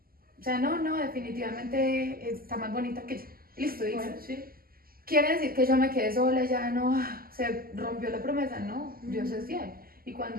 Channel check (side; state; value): left; late; 0.42 ms